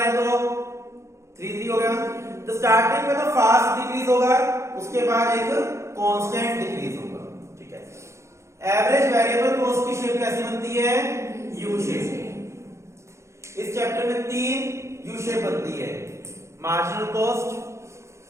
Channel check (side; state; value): left; late; 0.14 ms